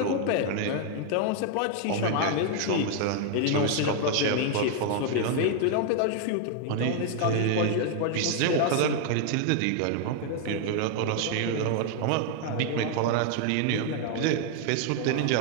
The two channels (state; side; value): different; both; correlation 0.00